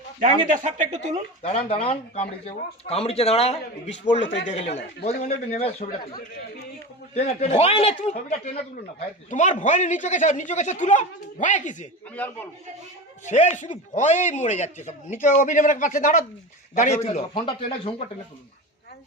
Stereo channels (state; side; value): normal; both; correlation 0.27